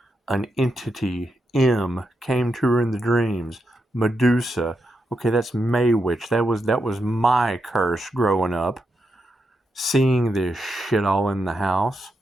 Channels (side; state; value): both; normal; correlation 0.84